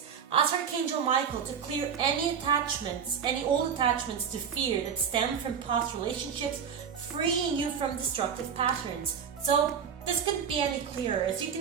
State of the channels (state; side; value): quieter; left; 7.3 dB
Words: Ask Archangel Michael to clear any attachments, any old attachments to fear that stem from past relationships, freeing you from destructive patterns. So this couldn't be any clearer. As you